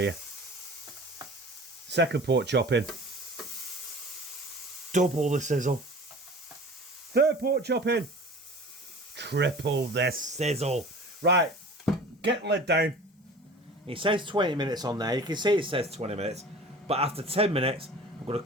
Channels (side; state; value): both; normal; correlation 0.41